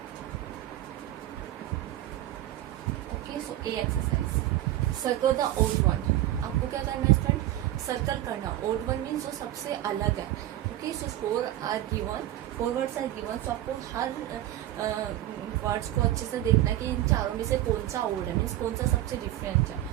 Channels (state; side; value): quieter; left; 14.1 dB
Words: Okay, so A exercise. Circle the odd one. आपको क्या करना है student? Circle करना. odd one means जो सबसे अलग है. Okay, so 4 are given. 4 words are given. So आपको हर वर्ड्स को अच्छे से देखना है कि इन चारों में से कौन सा odd है, मीन्स कौन सा सबसे डिफरेंट है.